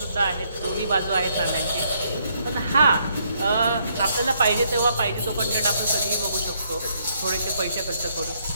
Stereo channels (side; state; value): both; inverted; correlation -0.72